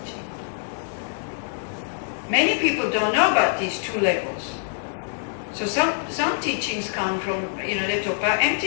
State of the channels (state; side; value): silent; right; digital silence